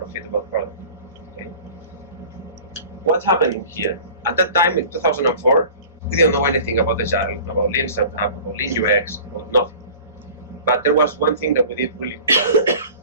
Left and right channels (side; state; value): both; inverted; correlation -0.42